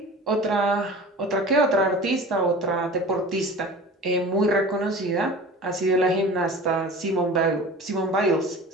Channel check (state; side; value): normal; both; correlation 0.38